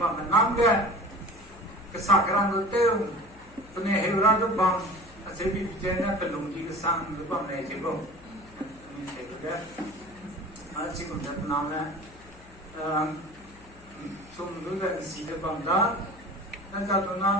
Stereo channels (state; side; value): noise; left; hum, 23 dB below the sound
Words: namga, kesakaran itu, punya hewan itu bang, asyik bicara pelung di kesang itu bang nih cebong, ini saya juga, asyik kumpang namga, sumber dari sini bang dah, dan kalau